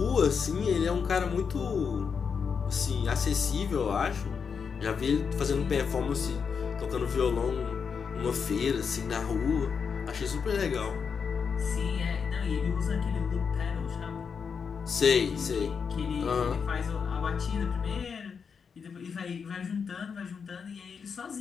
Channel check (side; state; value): right; quieter; 6.1 dB